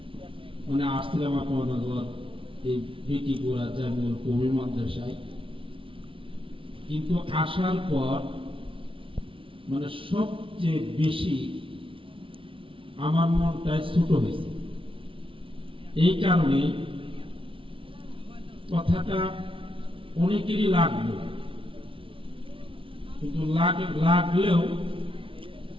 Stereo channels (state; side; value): late; left; 0.25 ms